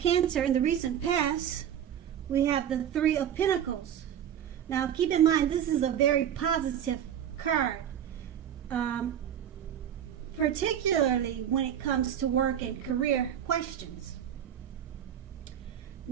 in the recent past, we have the Three of Pentacles. Now keep in mind, this is a very positive card. Particularly when it comes to work and career questions.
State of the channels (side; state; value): left; quieter; 9.6 dB